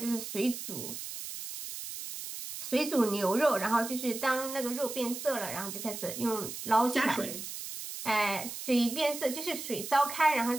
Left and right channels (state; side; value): noise; right; hiss, 8 dB below the sound